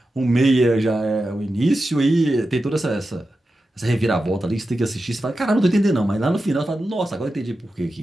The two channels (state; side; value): normal; both; correlation 0.91